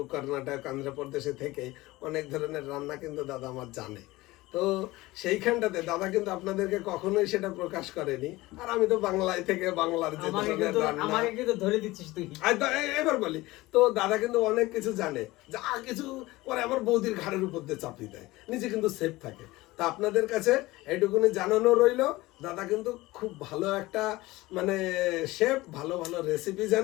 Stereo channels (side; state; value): right; quieter; 19.6 dB